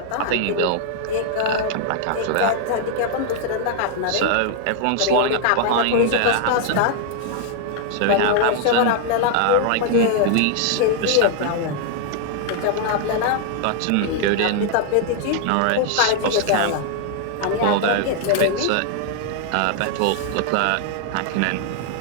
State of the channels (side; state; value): both; different; correlation 0.00